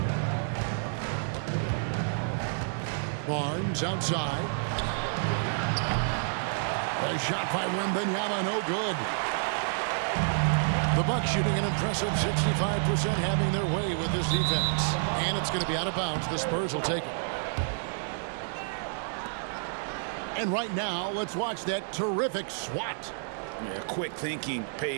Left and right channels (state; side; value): silent; left; digital silence